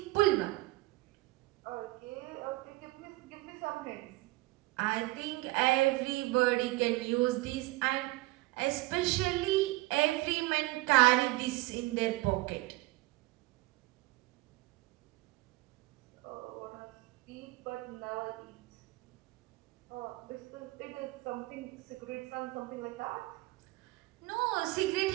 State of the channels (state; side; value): quieter; left; 20.8 dB